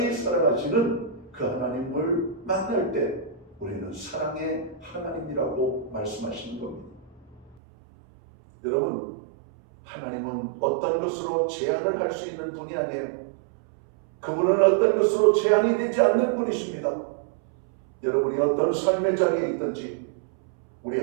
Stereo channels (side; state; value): left; drops out; at 7.6 s